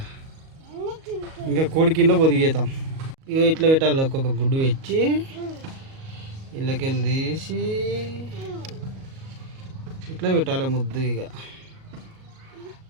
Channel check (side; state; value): left; late; 37 ms